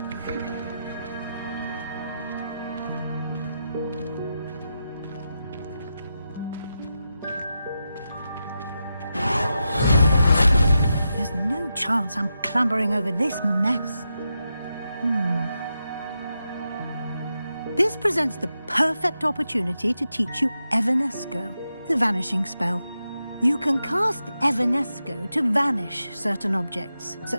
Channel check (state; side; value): inverted; both; correlation -0.88